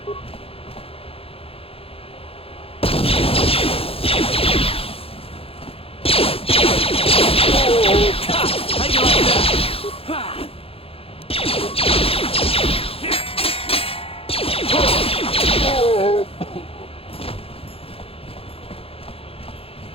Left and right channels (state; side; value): late; right; 0.27 ms